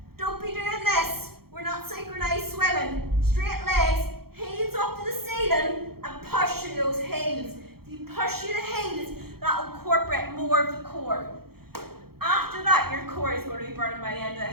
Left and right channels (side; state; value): left; late; 0.95 ms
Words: Don't be doing this. We're not synchronized swimming. Straight legs, heels up to the ceiling, and push through those heels. If you push through the heels, that will incorporate more of the core. After that, your core is going to be burning by the end of